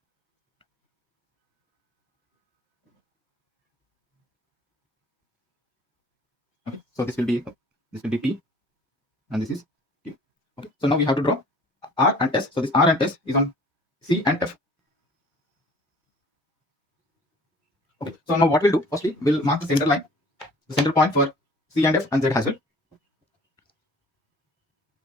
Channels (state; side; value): normal; both; correlation 0.50